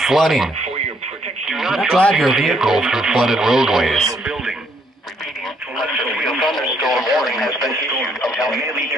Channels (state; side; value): normal; both; correlation 0.69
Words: flooding. Do not drive your vehicle through flooded roadways. Repeating, a severe thunderstorm warning has been issued until 8